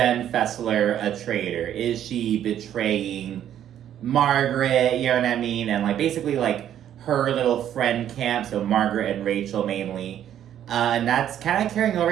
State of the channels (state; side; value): quieter; left; 10.6 dB